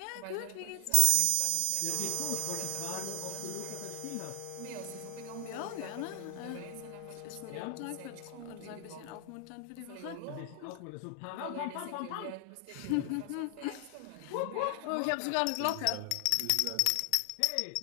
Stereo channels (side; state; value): both; different; correlation 0.00